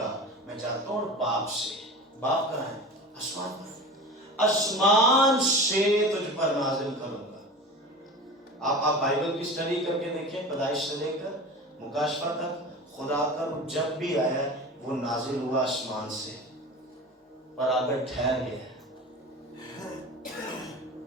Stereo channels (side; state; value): both; normal; correlation 0.34